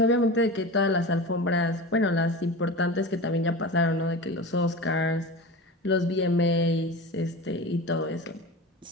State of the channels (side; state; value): both; normal; correlation 0.30